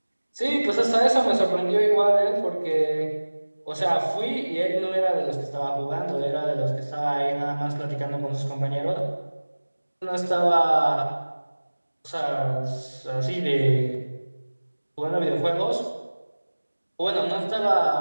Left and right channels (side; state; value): both; inverted; correlation -1.00